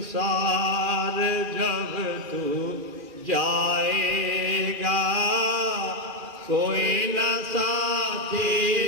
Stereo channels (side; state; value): left; late; 2.4 ms